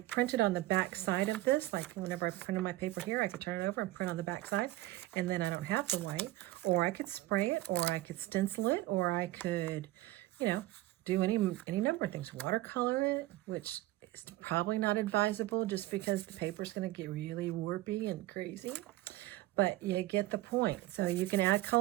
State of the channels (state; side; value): quieter; left; 17.6 dB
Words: on the back side of this, like whenever I printed my paper here, I could turn it over and print on the back side, and then I don't have the white. Or I could spray it, or I could stencil it, or I could, you know, do any number of things. Watercolor it, which is probably not advisable just because the paper's going to get really warpy and crazy. But you get the point. So you can add